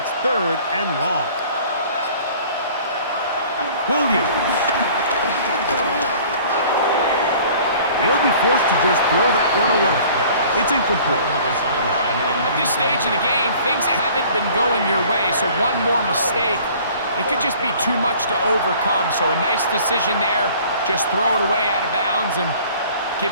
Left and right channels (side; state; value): both; inverted; correlation -0.50